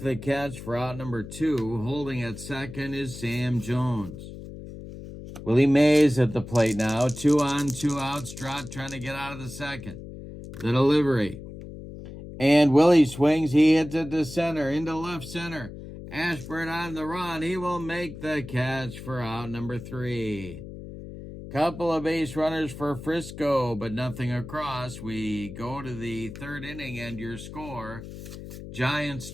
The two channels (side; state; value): left; noise; hum, 12 dB below the sound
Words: catch for out number 2. Holding at second is Sam Jones. Willie Mays at the plate now. 2 on, 2 outs. Drott trying to get out of the second. The delivery. And Willie swings. He hits it to center, into left center. Ashburn on the run. He will make the catch for out number 3. Couple of base runners for Frisco, but nothing across. We go to the third inning, and your score, Giants